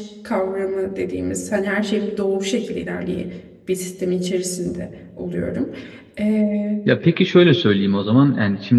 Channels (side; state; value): both; identical; correlation 1.00